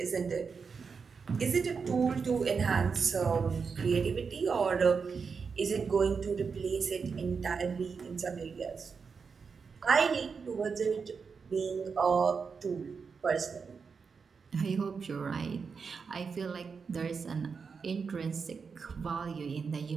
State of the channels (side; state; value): left; quieter; 5.5 dB